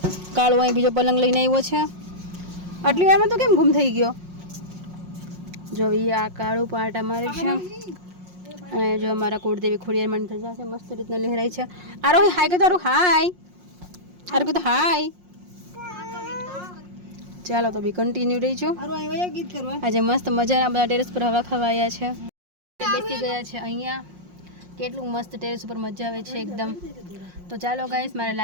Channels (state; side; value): late; left; 5.6 ms